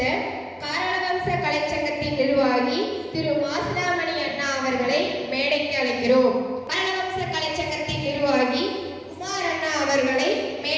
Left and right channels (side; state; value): both; identical; correlation 1.00